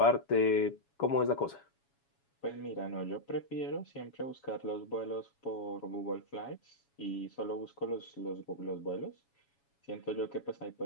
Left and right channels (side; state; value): right; late; 7.2 ms